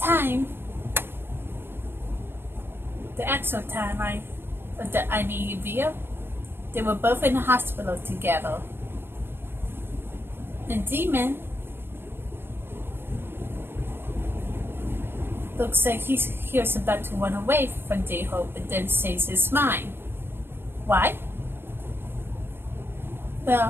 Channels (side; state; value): left; late; 0.11 ms